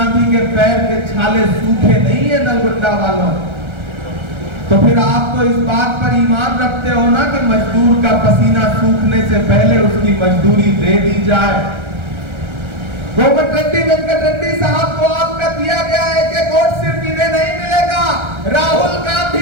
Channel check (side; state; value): left; late; 1.3 ms